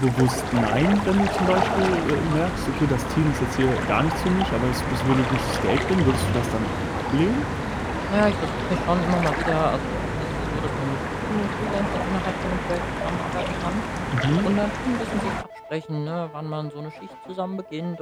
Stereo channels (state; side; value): identical; both; correlation 1.00